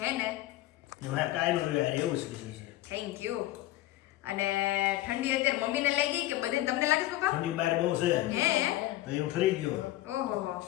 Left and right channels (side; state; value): right; quieter; 16.1 dB